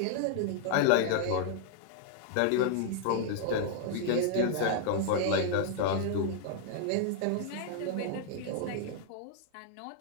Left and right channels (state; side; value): different; both; correlation 0.00